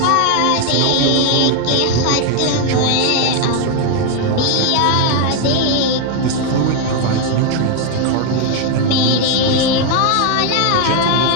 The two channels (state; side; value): different; both; correlation 0.01